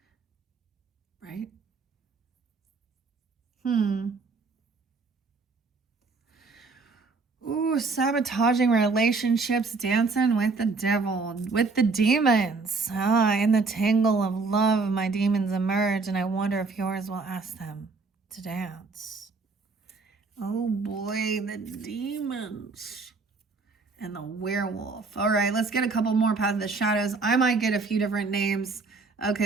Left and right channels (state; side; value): quieter; left; 4.1 dB